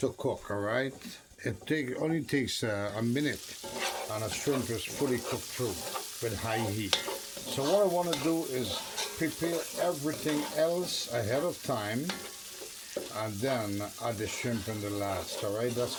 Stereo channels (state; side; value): identical; both; correlation 1.00